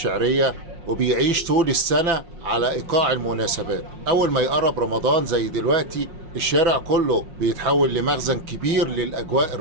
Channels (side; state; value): left; late; 6.0 ms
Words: وبيعيش طول السنة على إيقاع المناسبات. أول ما يقرب رمضان زي دلوقتي، الشارع كله بيتحول لمخزن كبير للأجواء